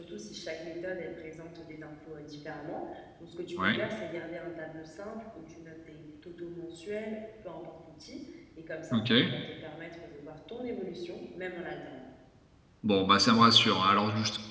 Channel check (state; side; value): identical; both; correlation 1.00